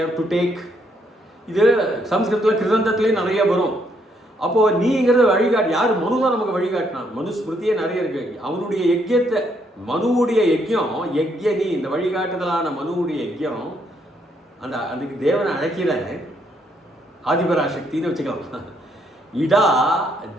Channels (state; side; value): normal; both; correlation 0.73